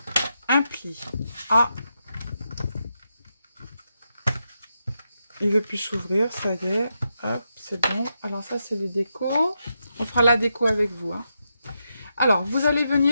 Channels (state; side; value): inverted; both; correlation -0.85